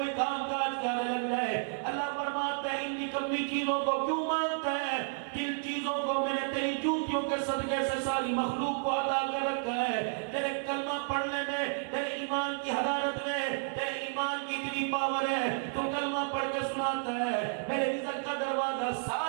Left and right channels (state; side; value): silent; left; digital silence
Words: کام کاج کرنے لگ جائے. اللہ فرماتا ہے ان نکمی چیزوں کو کیوں مانتا ہے؟ جن چیزوں کو میں نے تیری جوتیوں کے صدقے سے ساری مخلوق کو عطا کر رکھا ہے. تیرے کلمہ پڑھنے میں، تیرے ایمان کی حرارت میں، تیرے ایمان کی اتنی پاور ہے، تو کلمہ پڑھ کے سناتا ہے میرے رزق کا دروازہ